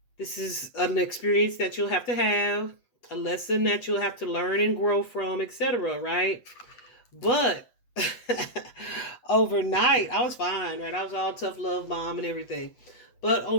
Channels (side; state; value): right; late; 8.0 ms